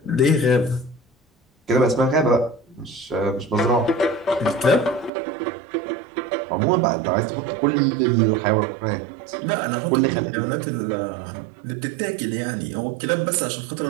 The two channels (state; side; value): drops out; left; at 5.1 s